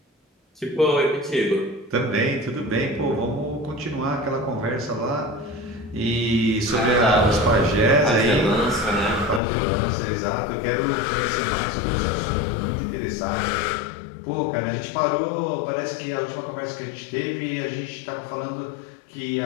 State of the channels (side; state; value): right; drops out; at 9.4 s